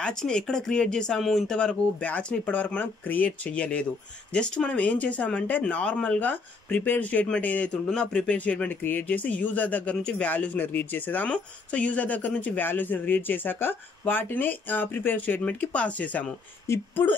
ఎక్కడ క్రియేట్ చేసాము ఇంతవరకు బ్యాచ్ని ఇప్పటివరకు మనం క్రియేట్ చేయలేదు. జస్ట్ మనం ఏం చేసామంటే నార్మల్గా ప్రిపేర్ స్టేట్మెంట్ ఏదైతే ఉంటుందో ఆ ప్రిపేర్ స్టేట్మెంట్ క్రియేట్ చేసి యూజర్ దగ్గర నుంచి వాల్యూస్ని రీడ్ చేసేసాము. సో యూజర్ దగ్గర నుంచి వాల్యూస్ని రీడ్ చేశాక వాటిని ప్రిపేర్ స్టేట్మెంట్కి పాస్ చేసాము. ఇప్పుడు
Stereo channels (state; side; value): quieter; right; 4.0 dB